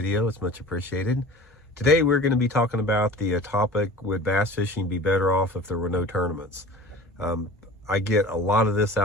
It's much appreciated. Today we're going to be talking about the topic, would bass fishing be better off if there were no tournaments? I get a lot of this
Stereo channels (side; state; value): both; normal; correlation 0.40